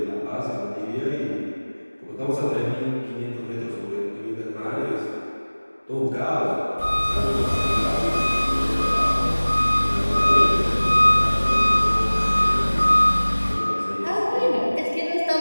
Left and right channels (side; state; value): both; inverted; correlation -1.00